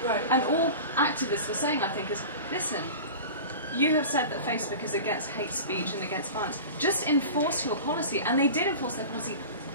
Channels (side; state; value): both; inverted; correlation -0.34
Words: Right. And all activists were saying, I think, is listen. You have said that Facebook is against hate speech and against violence. Just enforce your policy. And they did enforce their policy,